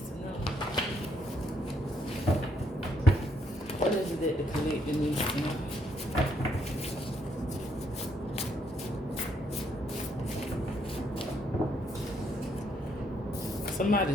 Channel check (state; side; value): normal; both; correlation 0.73